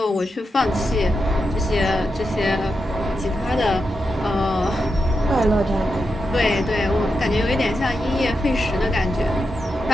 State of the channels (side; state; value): both; normal; correlation 0.87